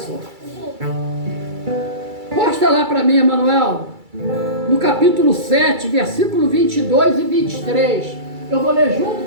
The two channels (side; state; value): left; late; 2.3 ms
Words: Posta lá para mim, Emanuel, no capítulo 7, versículo 22 e 23. Eu vou ler junto